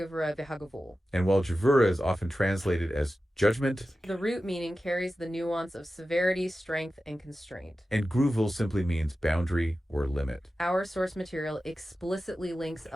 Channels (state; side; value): normal; both; correlation 0.94